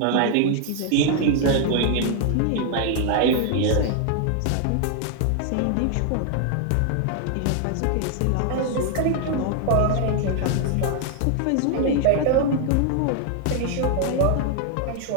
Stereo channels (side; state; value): both; different; correlation 0.00